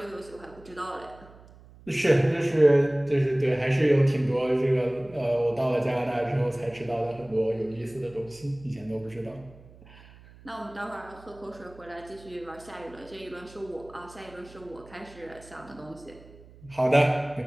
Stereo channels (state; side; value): noise; right; hum, 22 dB below the sound